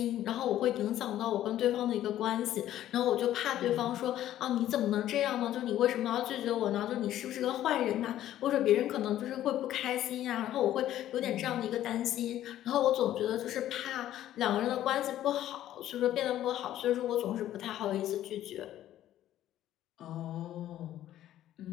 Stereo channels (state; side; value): quieter; right; 12.6 dB